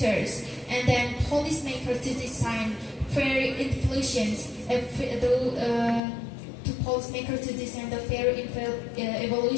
and then policymakers to design fair inflations to policymakers to design the fair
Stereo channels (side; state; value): right; drops out; at 6.0 s